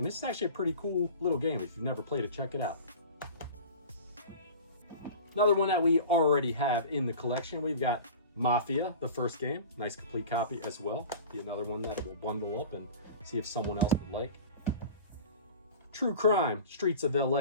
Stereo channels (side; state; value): both; inverted; correlation -0.38